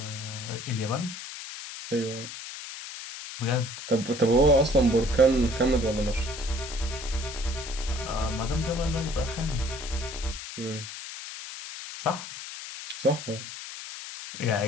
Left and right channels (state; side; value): noise; left; hiss, 10 dB below the sound